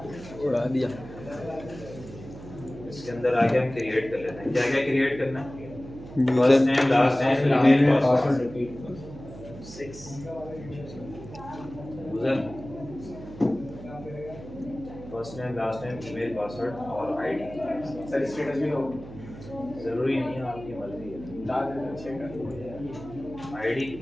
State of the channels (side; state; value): right; noise; hum, 14 dB below the sound